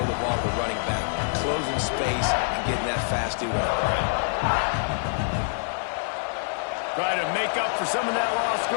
ball to the running back, closing space and getting that fast dude on the ground. Try to make up for some of that lost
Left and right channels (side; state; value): right; silent; 61 dB below the other